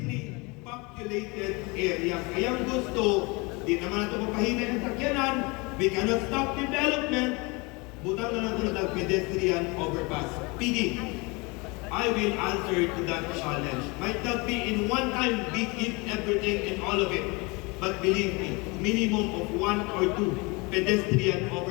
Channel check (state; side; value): quieter; right; 27.2 dB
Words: populated areas. Kaya gusto, di naman natin mapahinay ang sakyanan, we cannot stop development, butang na natin ang pedestrian overpass. PD, I will answer to that challenge. Might not be in one time, we give everything and all of it. But believe me, minimum of 1 or 2 pedestrian